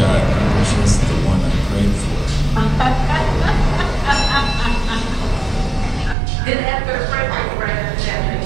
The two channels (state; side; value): drops out; left; at 6.2 s